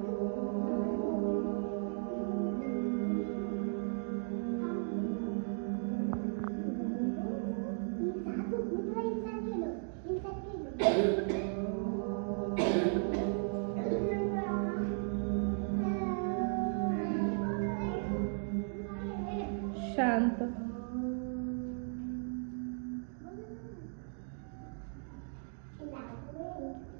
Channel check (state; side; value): silent; left; 54 dB below the other